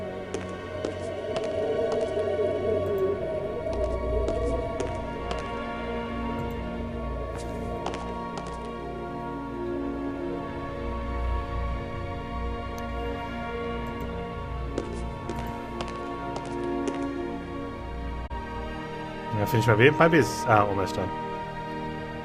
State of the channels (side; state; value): both; identical; correlation 1.00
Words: I'm gonna finish my beer. My beer's almost done.